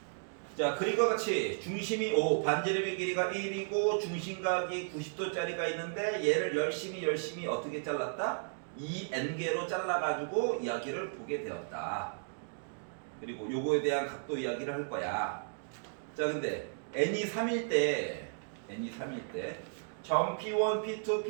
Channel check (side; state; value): left; silent; digital silence